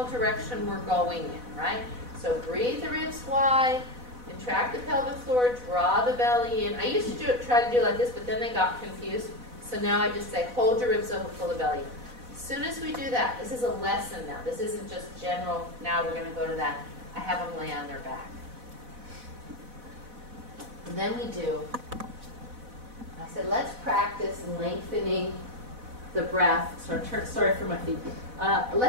direction we're going in, right? So breathe the ribs wide, contract the pelvic floor, draw the belly in. I used to try to do it like this, but then they got confused. So now I just say, hold your ribs open, pull the belly in. As soon as we do that, this is a lesson now. This isn't just general, now we're going to go to that. I have them lay on their back. And then we do, I said, let's practice lengthening the breath. Sorry for my feet.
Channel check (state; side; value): late; left; 4.1 ms